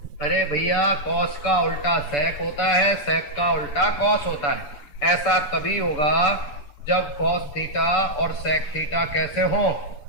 अरे भैया कॉस का उल्टा सेक होता है, सेक का उल्टा कॉस होता है। ऐसा तभी होगा जब कॉस थीटा और सेक थीटा कैसे हो,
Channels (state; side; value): late; right; 7.0 ms